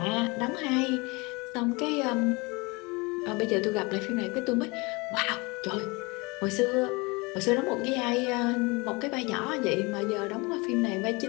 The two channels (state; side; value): quieter; right; 26.5 dB